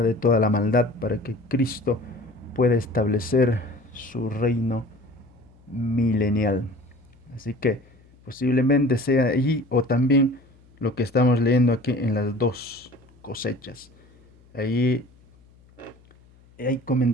de toda la maldad, para que Cristo pueda establecer su reino milenial. Así que posiblemente sea allí, o también lo que estamos leyendo aquí en las dos cosechas. Ahí hay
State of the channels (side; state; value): left; noise; hum, 28 dB below the sound